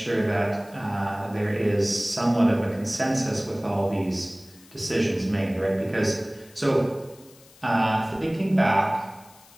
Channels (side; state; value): left; noise; hiss, 25 dB below the sound